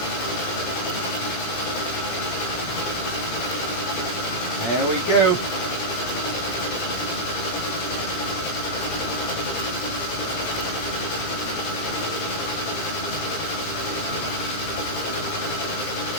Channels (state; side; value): late; right; 17 ms